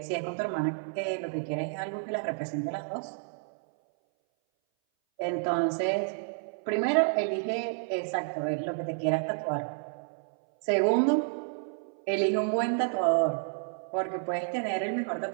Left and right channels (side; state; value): left; silent; 58 dB below the other